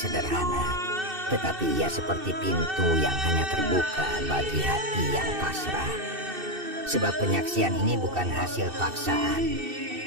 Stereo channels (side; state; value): left; late; 2.6 ms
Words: tetapi ia seperti pintu yang hanya terbuka bagi hati yang pasrah. Sebab penyaksian ini bukan hasil paksaan,